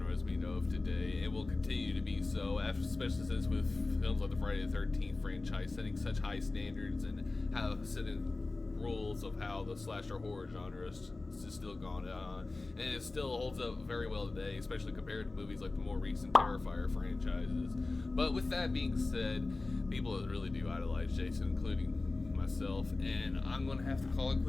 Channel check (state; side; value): quieter; right; 3.3 dB